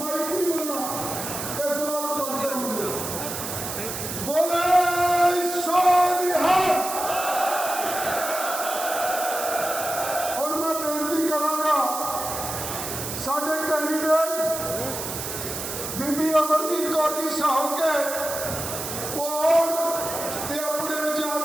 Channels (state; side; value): noise; right; hiss, 6 dB below the sound